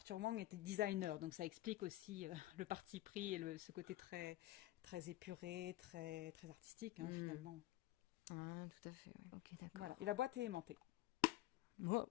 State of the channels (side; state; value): right; quieter; 15.9 dB